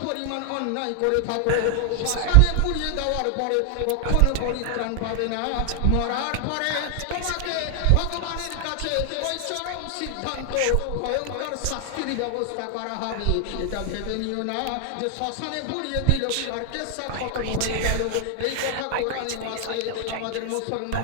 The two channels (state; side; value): different; both; correlation 0.00